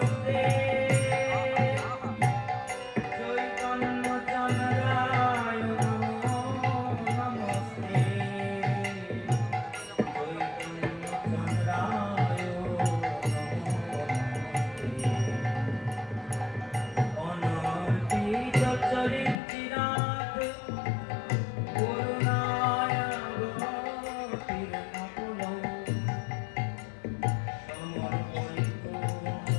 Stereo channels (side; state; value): right; drops out; at 19.4 s